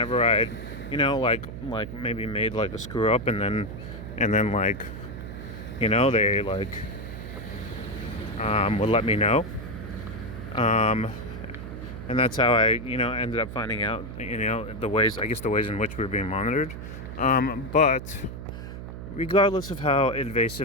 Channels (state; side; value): noise; right; hum, 9 dB below the sound